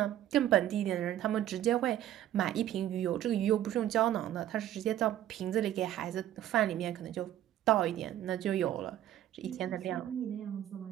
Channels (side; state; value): left; quieter; 12.2 dB